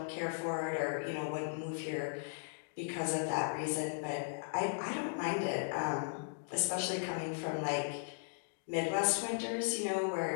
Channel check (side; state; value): right; silent; digital silence